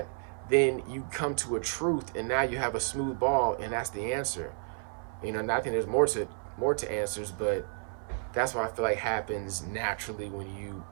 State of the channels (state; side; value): silent; left; 57 dB below the other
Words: then you come to a truth, and now you have a smooth ball, and that's the answer. And I think there's more to answers, but that's what I feel like happens naturally when you